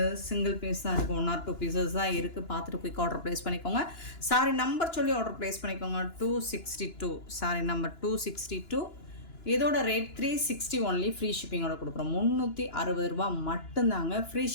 சிங்கிள் பீஸ் தான் இருக்குது. 1 or 2 பீசஸ் தான் இருக்குது. பார்த்துட்டு குயிக் ஆர்டர் ப்ளேஸ் பண்ணிக்கோங்க. சாரி நம்பர் சொல்லி ஆர்டர் ப்ளேஸ் பண்ணிக்கோங்க. 262 சாரி நம்பர் 262. இதோட ரேட் 360 ஒன்லி. ஃப்ரீ ஷிப்பிங்கோட கொடுக்குறோம். 360 ரூபா மட்டும்தாங்க ஃப்ரீ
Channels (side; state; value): right; late; 2.9 ms